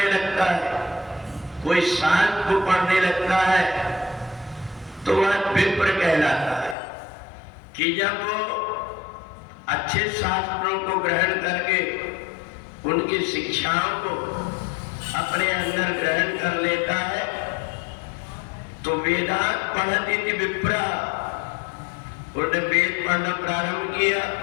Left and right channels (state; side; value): drops out; right; at 6.8 s